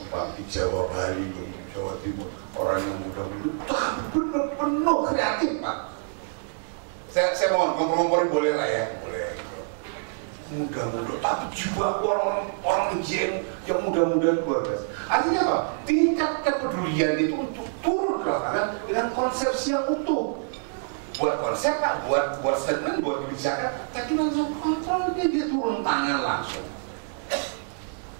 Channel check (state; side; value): silent; left; digital silence